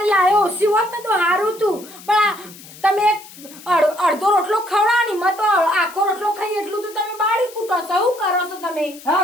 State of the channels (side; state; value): left; noise; hiss, 19 dB below the sound